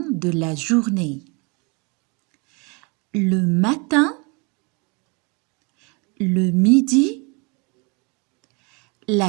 de la journée. Le matin, le midi,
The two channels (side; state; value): left; quieter; 30.9 dB